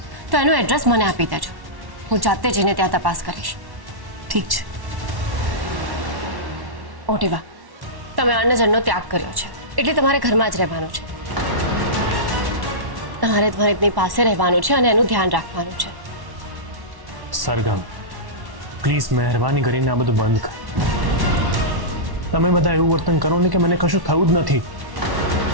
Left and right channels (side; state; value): left; late; 1.1 ms